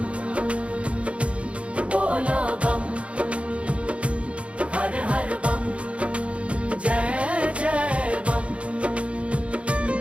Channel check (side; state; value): left; late; 0.061 ms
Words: बोलो बम, हर हर बम, जय जय बम।